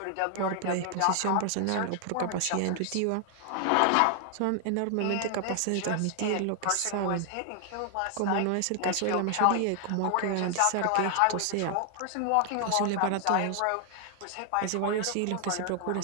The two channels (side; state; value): both; different; correlation 0.00